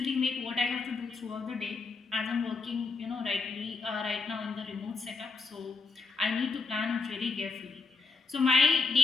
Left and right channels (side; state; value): right; quieter; 4.3 dB